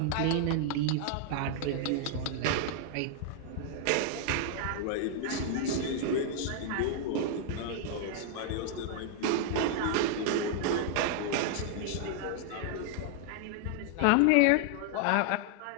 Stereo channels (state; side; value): different; both; correlation 0.00